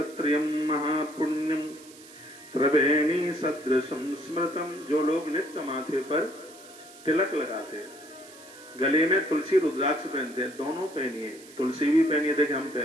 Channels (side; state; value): right; noise; hiss, 21 dB below the sound